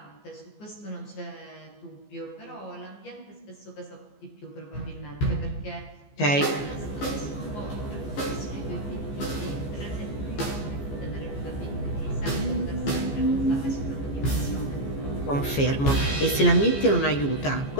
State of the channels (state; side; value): late; right; 14 ms